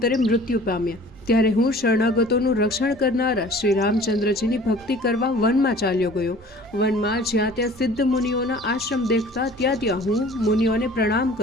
મૃત્યુ પામ્યા. ત્યારે હું શરણાગતોનું રક્ષણ કરનારા શ્રી રામચંદ્રજીની ભક્તિ કરવા વનમાં ચાલ્યો ગયો. વનમાં જ્યાં ત્યાં સિદ્ધ મુનિઓના આશ્રમ દેખતા ત્યાં હું મુનિઓને પ્રણામ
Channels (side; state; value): both; normal; correlation 0.48